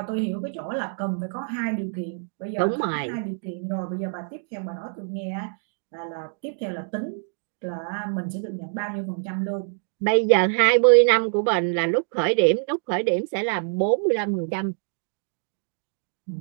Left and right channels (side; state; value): left; silent; 62 dB below the other